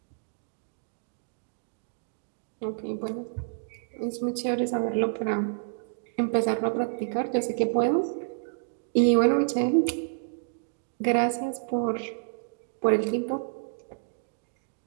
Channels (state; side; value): silent; left; digital silence